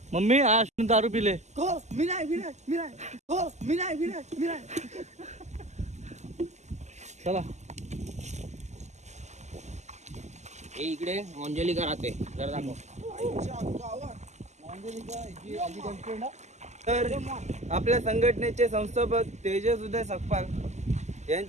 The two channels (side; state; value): left; late; 0.33 ms